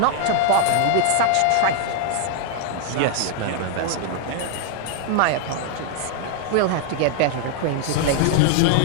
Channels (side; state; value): both; different; correlation 0.00